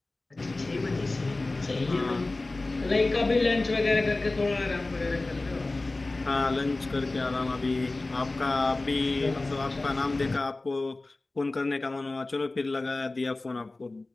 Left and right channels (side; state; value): right; quieter; 3.1 dB